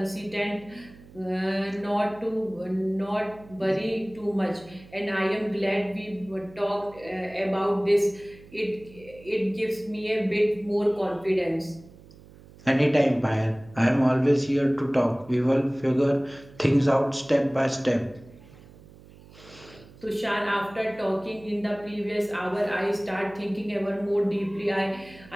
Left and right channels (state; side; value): noise; right; hum, 22 dB below the sound